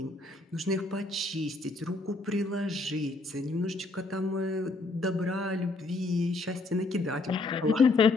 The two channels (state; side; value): quieter; right; 3.2 dB